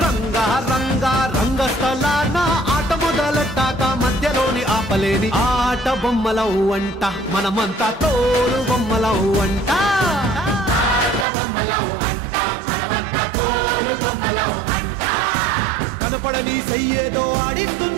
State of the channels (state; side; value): drops out; left; at 11.2 s